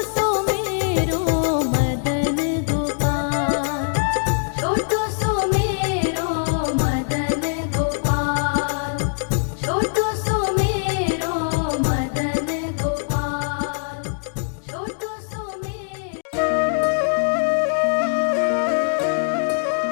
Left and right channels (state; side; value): silent; right; 64 dB below the other